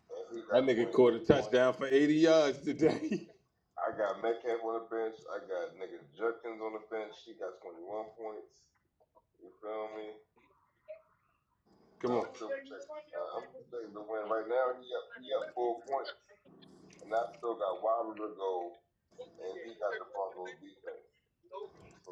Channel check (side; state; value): both; identical; correlation 1.00